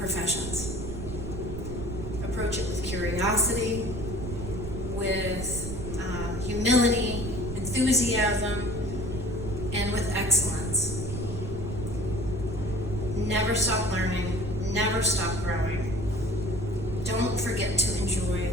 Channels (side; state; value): right; noise; rumble, 6 dB below the sound